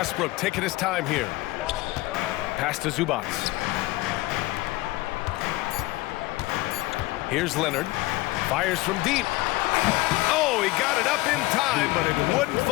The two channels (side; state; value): right; quieter; 19.8 dB